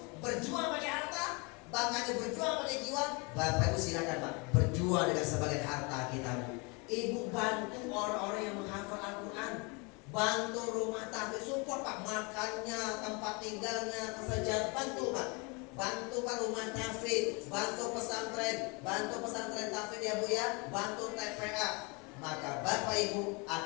berjuang pakai harta, bahkan berjuang pakai jiwa. Bapak Ibu silakan Pak, berjuang dengan sebagian harta kita Bu. Ibu bantu orang-orang yang menghafal Al-Quran. Bantu rumah tafid, support Pak, makannya, tempat tinggalnya, kesejahteraan, bantu Pak. Bantu Pak rumah tafid, bantu pesantren tafid ya Bu ya, bantu TPA. Maka Bapak Ibu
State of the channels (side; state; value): right; quieter; 30.1 dB